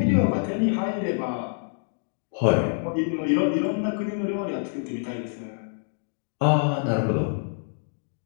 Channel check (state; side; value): silent; right; digital silence